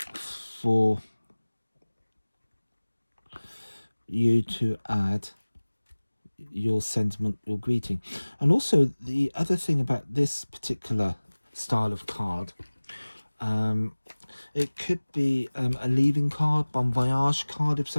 for you to add your sentiment, your greeting. And also the other thing about this particular style of card, it could be a leaving card, bon voyage card if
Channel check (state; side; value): inverted; both; correlation -1.00